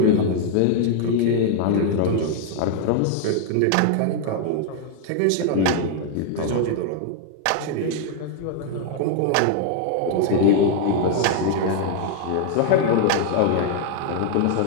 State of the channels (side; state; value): both; different; correlation 0.00